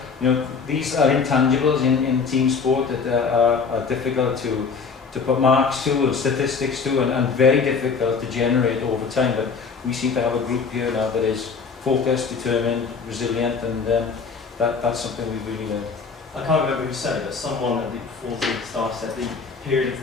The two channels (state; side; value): quieter; right; 5.3 dB